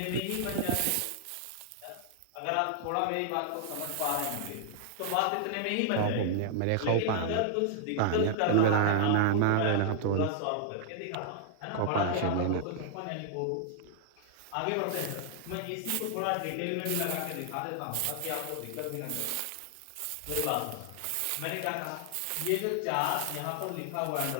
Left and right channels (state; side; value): different; both; correlation 0.00